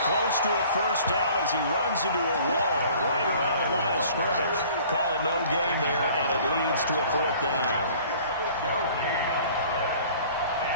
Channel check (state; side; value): inverted; both; correlation -0.50